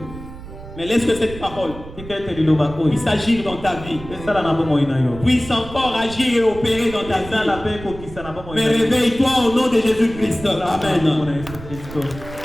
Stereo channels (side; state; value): right; noise; rumble, 14 dB below the sound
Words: Mais laisse que cette parole tika ete liloba oyo puisse agir dans ta vie, esala na bomoi na yo puisse encore agir et opérer dans ta esala vie. mpe ekokisa na bomoi Mais na yo réveille-toi au nom de Jésus-Christ. Amen. Kombo na Yesu